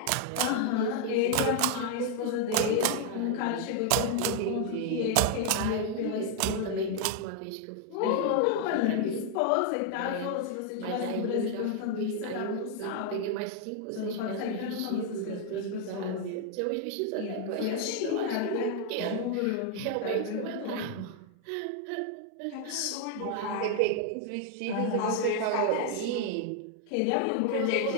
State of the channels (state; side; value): different; both; correlation 0.00